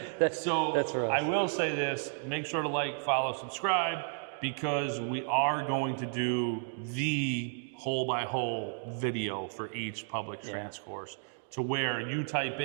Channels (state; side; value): silent; left; 56 dB below the other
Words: That's for us. I will say this: make sure to like, follow, subscribe, because we are going to do the hole-by-hole video for each public Strands course, to where you type